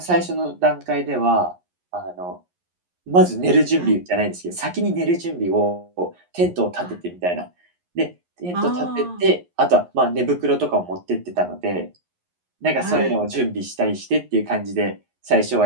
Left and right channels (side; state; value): left; late; 11 ms